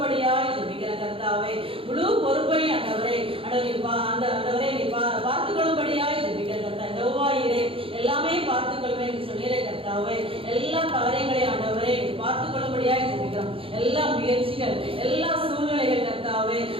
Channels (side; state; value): left; late; 0.27 ms